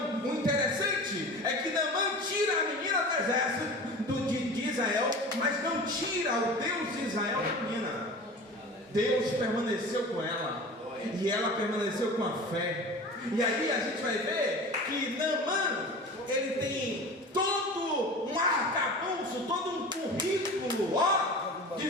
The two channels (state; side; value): normal; both; correlation 0.36